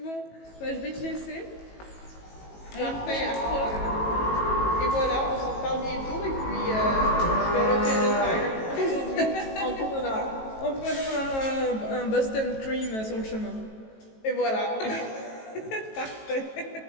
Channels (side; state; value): right; late; 18 ms